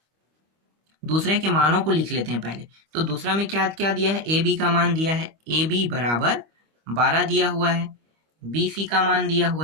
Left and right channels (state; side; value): late; left; 25 ms